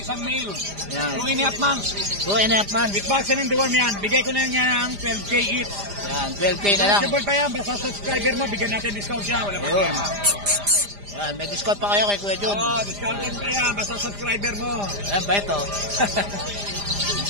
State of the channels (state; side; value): late; left; 5.0 ms